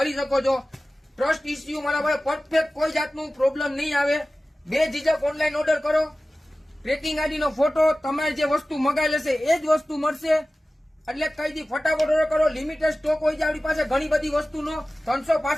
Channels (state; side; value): normal; both; correlation 0.96